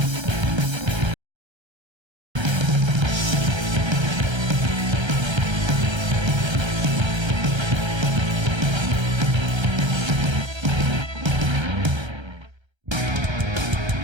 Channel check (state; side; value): late; left; 1.3 ms